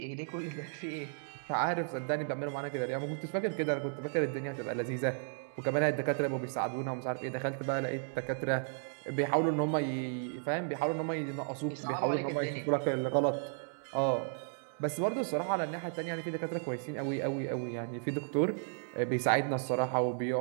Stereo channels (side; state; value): left; silent; digital silence